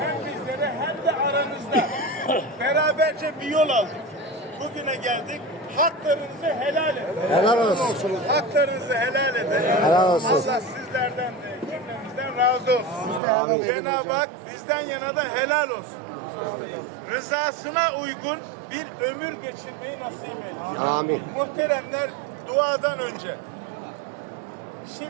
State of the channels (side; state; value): left; drops out; at 13.2 s